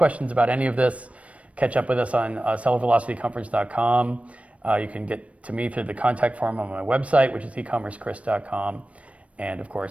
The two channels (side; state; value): left; late; 0.064 ms